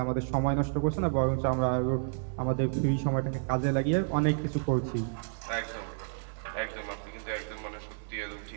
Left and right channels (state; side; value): silent; left; 57 dB below the other